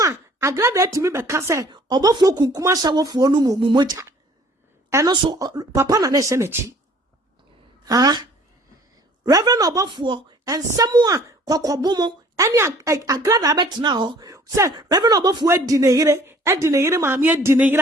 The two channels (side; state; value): both; normal; correlation 0.54